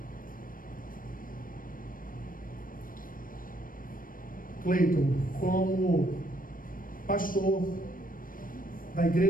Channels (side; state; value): right; late; 0.40 ms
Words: Cleiton, como pastor da